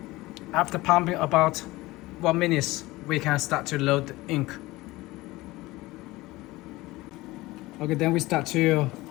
After pumping about 1 minute, we can start to load the ink. Okay, then we start to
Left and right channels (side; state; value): right; quieter; 19.7 dB